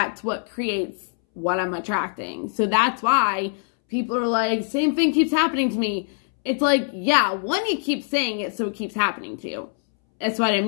what creates what I'm attracting. So that's why people are like, same thing keeps happening to me. It's like, yeah, one, you keep saying it, so it keeps happening to you. That's what I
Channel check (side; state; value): right; silent; 63 dB below the other